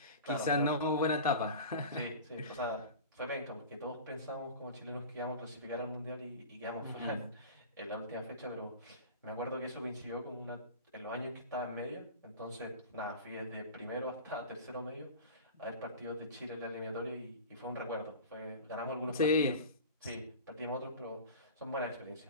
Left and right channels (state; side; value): inverted; both; correlation -0.35